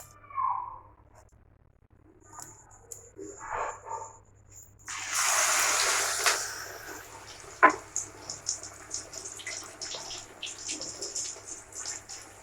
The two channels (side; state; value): both; identical; correlation 1.00